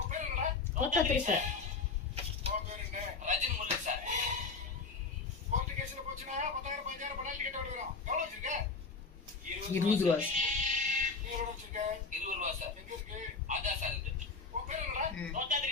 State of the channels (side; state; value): right; quieter; 4.5 dB